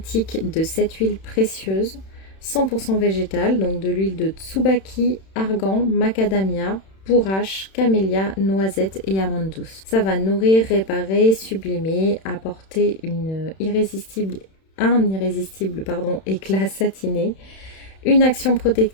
de 7 huiles précieuses 100% végétales, donc de l'huile de tsubaki, argan, macadamia, bourrache, camélia, noisette et amande douce. Ça va nourrir, réparer, sublimer, apporter un irrésistible éclat satiné, une action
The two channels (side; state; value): right; late; 31 ms